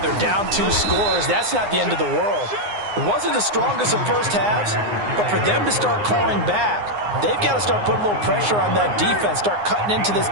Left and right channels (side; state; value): left; late; 9.7 ms